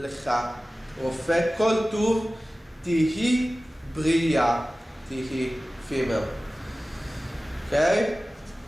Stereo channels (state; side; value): normal; both; correlation 0.96